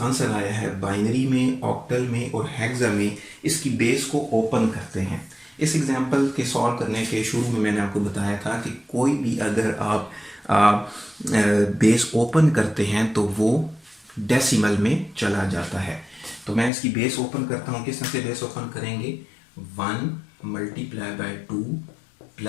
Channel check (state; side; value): drops out; right; at 16.7 s